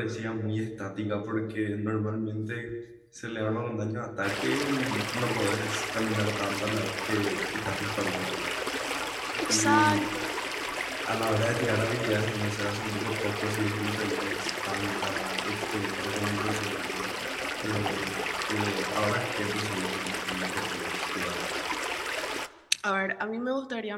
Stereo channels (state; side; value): identical; both; correlation 1.00